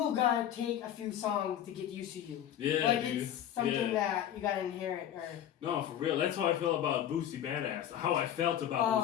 gotta take a few songs to get used to you. It's something that you gotta inherit. No, for real. That's how I feel about Boosie Badass. How I felt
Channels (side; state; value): right; quieter; 10.7 dB